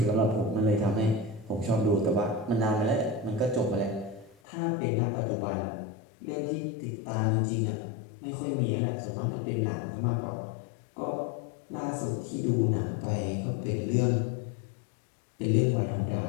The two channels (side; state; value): right; drops out; at 4.4 s